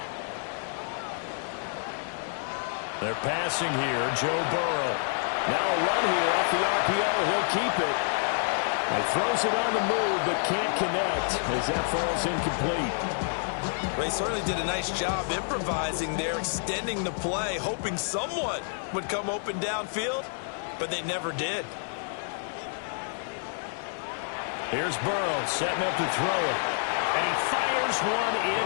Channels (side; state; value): right; silent; digital silence